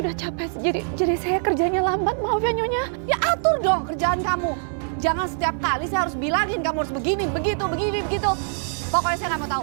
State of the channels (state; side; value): silent; left; 58 dB below the other